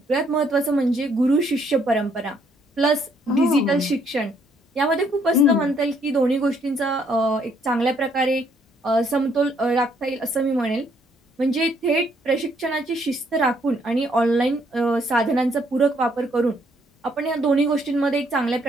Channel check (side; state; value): both; normal; correlation 0.68